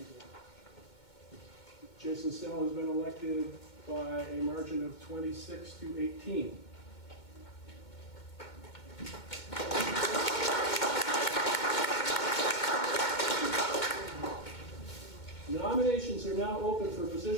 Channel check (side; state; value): right; late; 2.2 ms